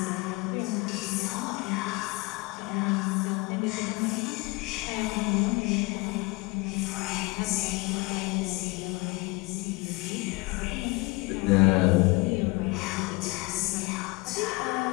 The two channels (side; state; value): right; quieter; 24.9 dB